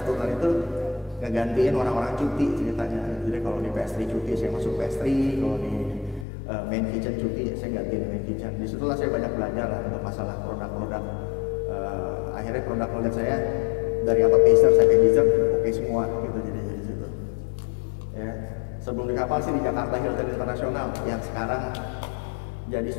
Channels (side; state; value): right; drops out; at 6.2 s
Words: turnan itu ngegantiin orang-orang cuti ceritanya. Jadi kalau di pastry cuti saya masuk pastry, kalau di main kitchen cuti saya gantiin main kitchen. Disitulah saya banyak belajar lah untuk masalah produk-produk. Akhirnya produk saya dari appetizer sampai dessert oke semua gitu jadi di situ. Ya. Sebelum di kapal sih di Jakarta Hilton Internasional yang sekarang jadi